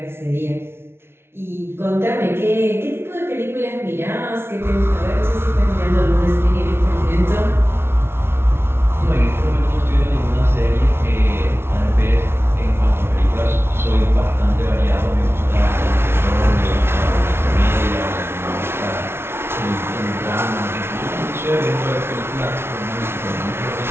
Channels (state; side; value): late; left; 0.12 ms